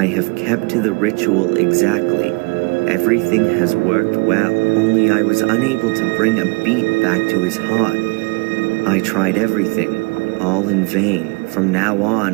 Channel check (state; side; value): quieter; left; 29.5 dB